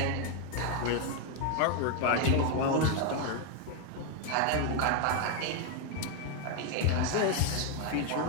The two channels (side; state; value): both; different; correlation 0.01